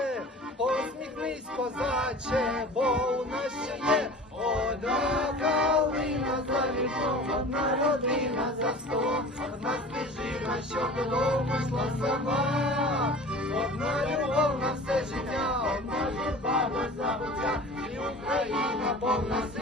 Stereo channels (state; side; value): normal; both; correlation 0.40